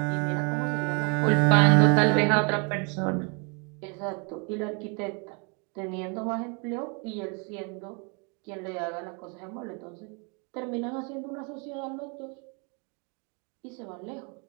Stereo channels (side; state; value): left; quieter; 34.8 dB